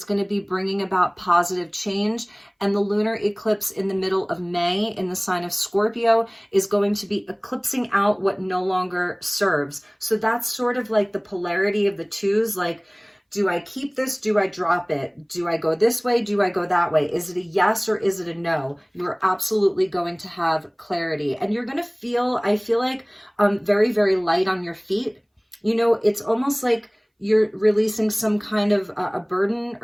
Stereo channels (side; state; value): both; identical; correlation 1.00